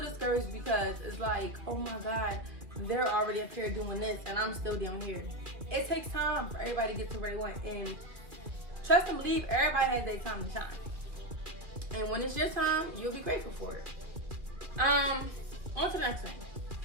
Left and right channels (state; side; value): late; left; 2.4 ms